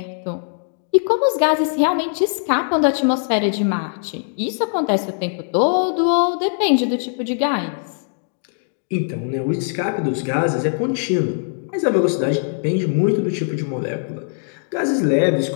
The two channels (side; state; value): right; silent; digital silence